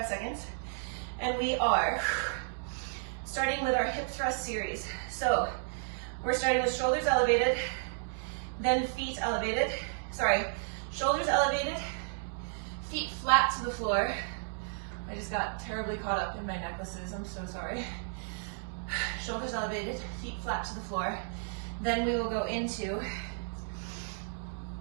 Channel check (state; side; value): silent; left; digital silence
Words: seconds. And we are starting with our hip thrust series. So we're starting with shoulders elevated, then feet elevated. Sorry, shoulders elevated, feet flat to the floor. I just got terribly caught up in my necklaces, I'm so sorry. Shoulders elevated, feet flat to the floor. Then we will go into